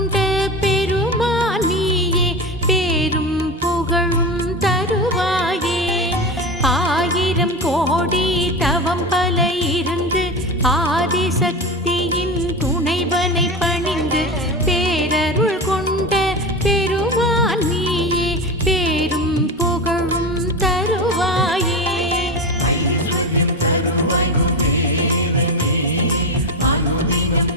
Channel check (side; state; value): both; normal; correlation 0.23